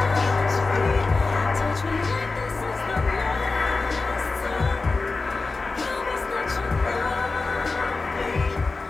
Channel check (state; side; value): quieter; right; 3.8 dB